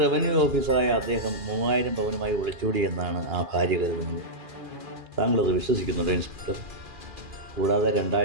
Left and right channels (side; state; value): left; late; 2.4 ms